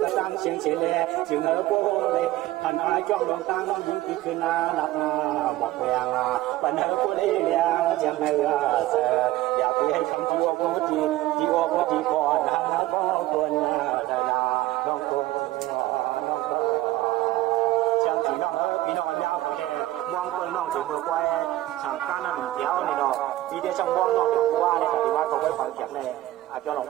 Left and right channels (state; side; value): quieter; left; 16.2 dB